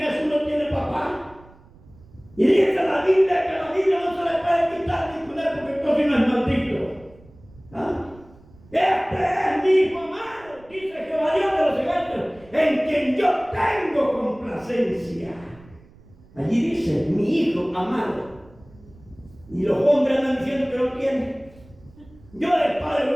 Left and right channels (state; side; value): noise; right; rumble, 25 dB below the sound